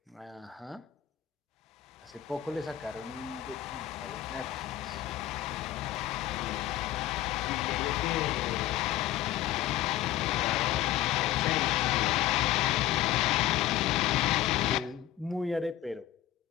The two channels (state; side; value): quieter; right; 13.1 dB